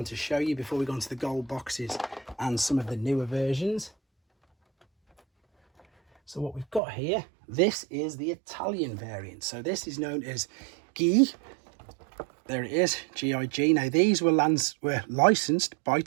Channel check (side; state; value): left; drops out; at 6.8 s